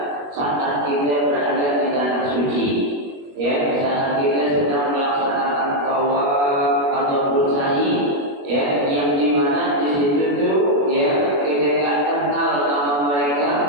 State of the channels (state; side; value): late; left; 21 ms